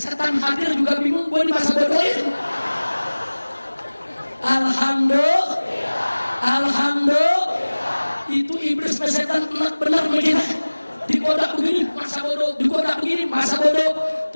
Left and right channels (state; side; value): inverted; both; correlation -1.00